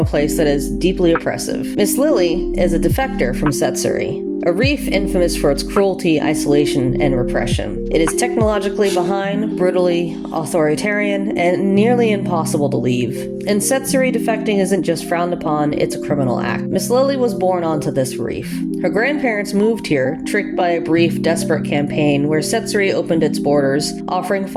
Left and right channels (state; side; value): identical; both; correlation 1.00